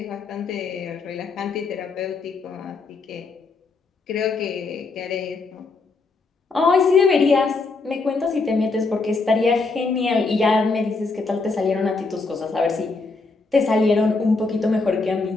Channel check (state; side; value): quieter; right; 3.9 dB